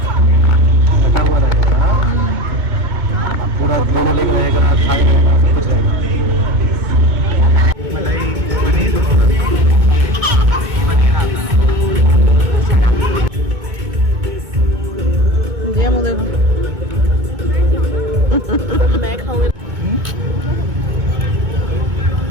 पूरा दोनों लेग रहेगा, थाई रहेगा, सब कुछ रहेगा। मलाई पनीर ये मुझे मैं खाऊंगी।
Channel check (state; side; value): late; left; 2.2 ms